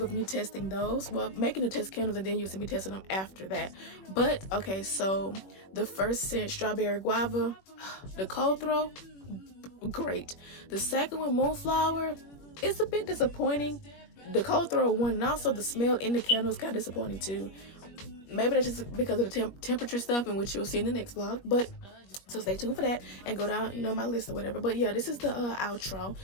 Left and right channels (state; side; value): late; right; 21 ms